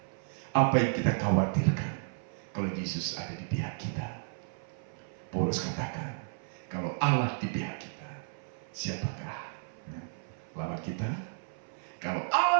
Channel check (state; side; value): silent; left; 56 dB below the other